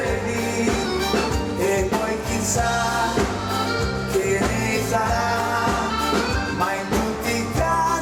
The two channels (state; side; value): identical; both; correlation 1.00